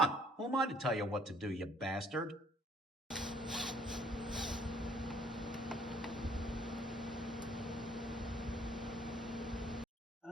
Who am I to tell you what to do, you bastard?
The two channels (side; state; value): both; normal; correlation 0.61